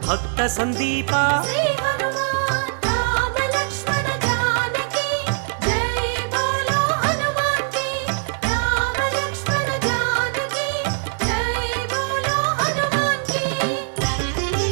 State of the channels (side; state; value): left; silent; 64 dB below the other